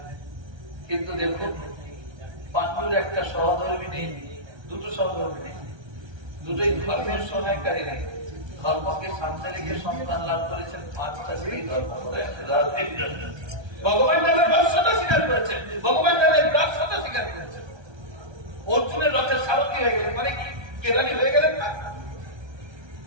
কিন্তু দেখুন পাণ্ডুর একটা সহধর্মী নেই, দুটো সহধর্মী নেই, দুটোই ধর্মের সহায়কারী নেই। ধর্মকে সামনে রেখে সন্তান লাভ করেছেন 5টা সেই ধর্ম করে। ভগবান তাদের রহস্যতা স্বীকার করেছেন, ভগবান তাদের রহস্যতা স্বীকার করেছেন। অর্জুনের রথের সারথী হয়ে গেলেন, মানে কি কেরানি হয়ে গেলেন না?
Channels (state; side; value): late; left; 1.3 ms